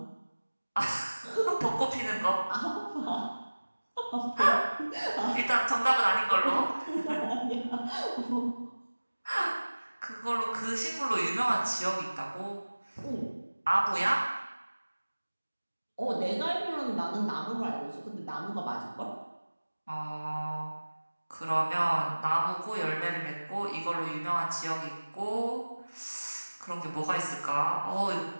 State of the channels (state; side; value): inverted; both; correlation -1.00